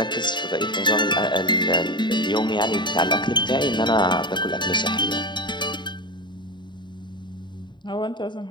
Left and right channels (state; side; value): late; right; 0.22 ms